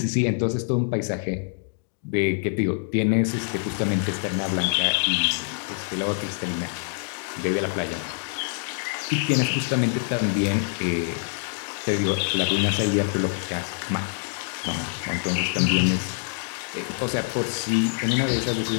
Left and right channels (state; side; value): silent; right; digital silence